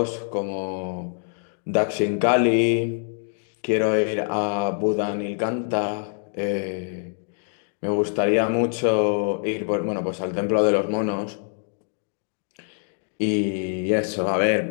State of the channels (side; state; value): right; silent; digital silence